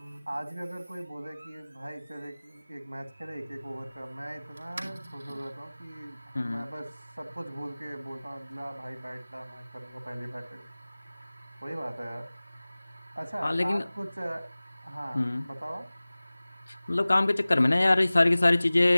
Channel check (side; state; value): both; inverted; correlation -0.99